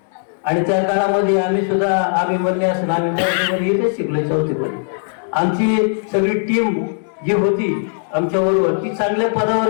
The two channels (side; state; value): right; silent; digital silence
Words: आणि त्या काळामध्ये आम्ही सुद्धा अभिमन्यू असं आम्ही मराठीमध्ये इथेच शिकलो चौथीमध्ये. आमची सगळी टीम जी होती आमच्या बरोबर ती चांगल्या